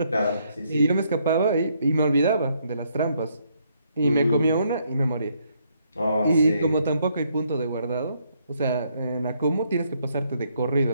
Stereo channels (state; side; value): inverted; both; correlation -0.72